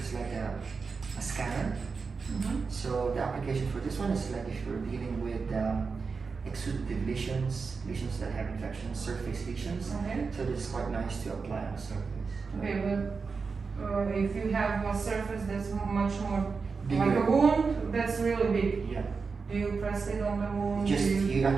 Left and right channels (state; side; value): quieter; left; 4.9 dB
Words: is like a scanner. So the application for this one is like if you're dealing with exudative lesions that have infections, surface lesions. Okay. So this is quite nice to apply on the surface. Okay, but if you have a surface that's much more Bigger. like a wound, that's really big. Yeah. Do you press it on the wound? You